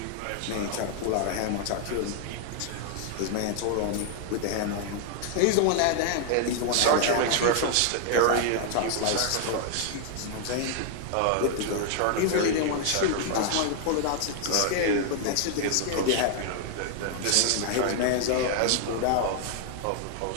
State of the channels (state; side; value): different; both; correlation 0.00